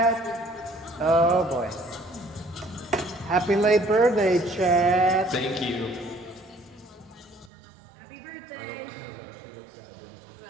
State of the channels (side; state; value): left; drops out; at 7.5 s